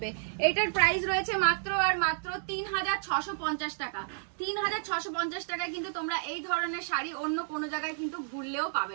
এটার প্রাইস রয়েছে মাত্র আর মাত্র 3650 টাকা। 3650 টাকায় কিন্তু তোমরা এই ধরনের শাড়ি অন্য কোনো জায়গায় কিন্তু ঘুরলেও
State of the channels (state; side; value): silent; left; digital silence